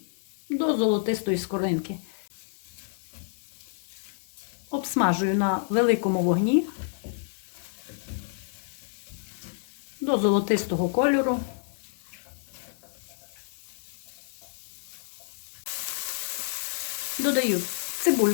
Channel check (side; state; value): right; silent; digital silence